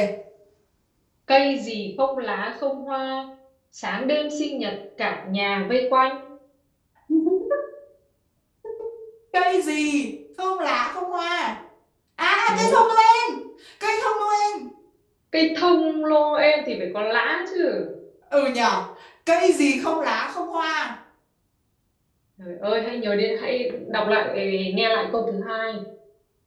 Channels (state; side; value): identical; both; correlation 1.00